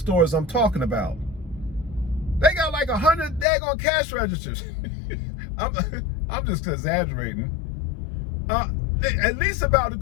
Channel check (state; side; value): drops out; right; at 3.5 s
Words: I'm talking about. They got like 100 daggone cash registers. I'm just exaggerating. At least about a